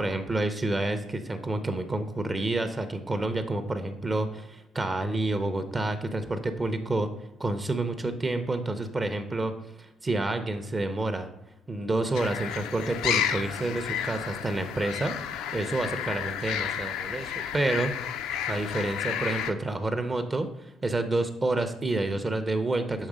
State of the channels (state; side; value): normal; both; correlation 0.79